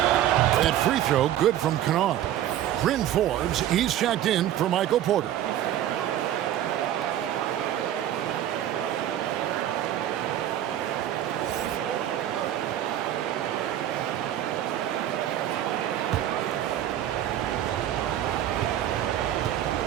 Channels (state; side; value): quieter; left; 11.8 dB